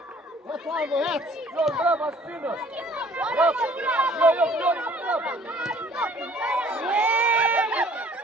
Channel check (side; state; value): both; normal; correlation 0.55